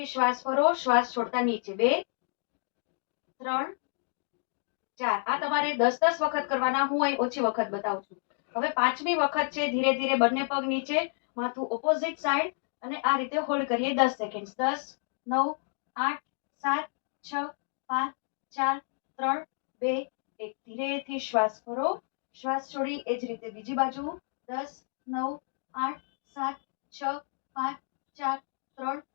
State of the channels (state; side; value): silent; right; 58 dB below the other